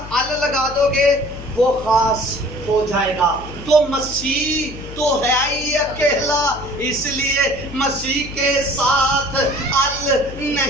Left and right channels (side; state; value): left; noise; hum, 13 dB below the sound